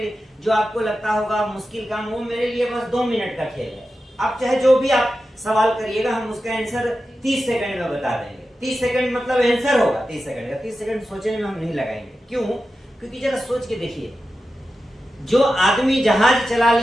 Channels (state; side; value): normal; both; correlation 0.92